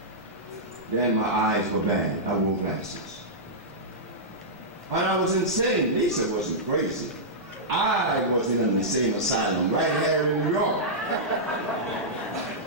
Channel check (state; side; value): normal; both; correlation -0.12